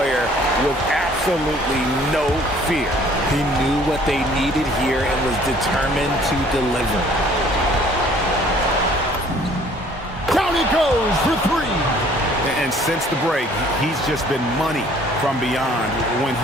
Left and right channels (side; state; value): both; normal; correlation 0.56